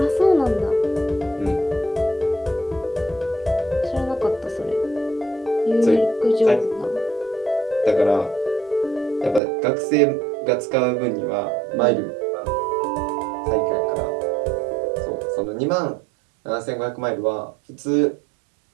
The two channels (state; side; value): drops out; left; at 9.4 s